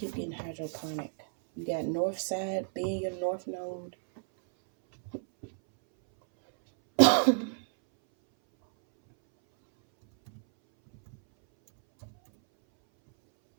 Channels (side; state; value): left; silent; 58 dB below the other